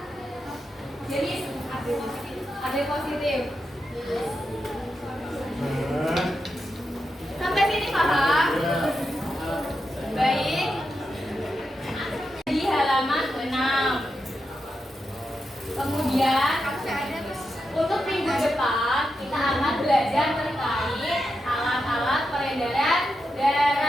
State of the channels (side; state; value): both; normal; correlation 0.87